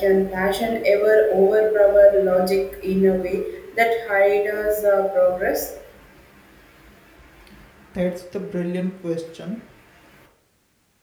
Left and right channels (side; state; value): both; identical; correlation 1.00